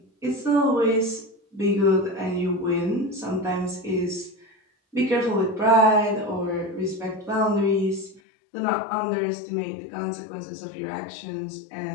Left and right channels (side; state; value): right; drops out; at 8.2 s